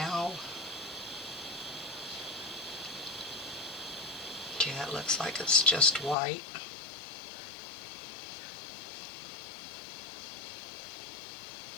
Okay, it looks like it's just white.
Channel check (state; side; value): drops out; right; at 6.2 s